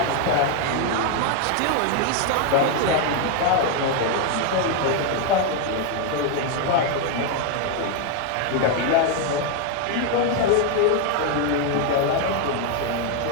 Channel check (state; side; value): different; both; correlation 0.01